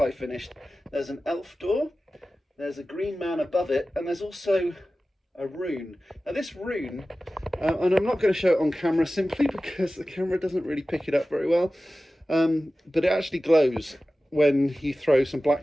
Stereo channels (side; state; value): both; normal; correlation 0.95